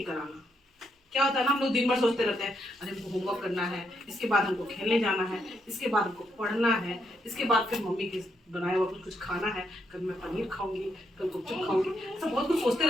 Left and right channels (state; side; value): normal; both; correlation 0.78